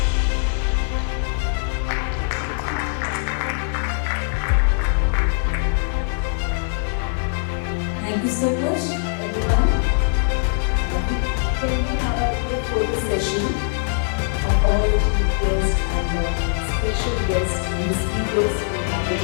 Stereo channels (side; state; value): right; silent; digital silence